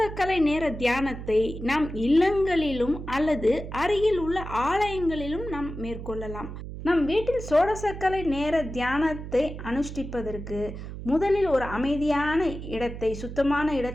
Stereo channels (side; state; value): right; noise; hum, 9 dB below the sound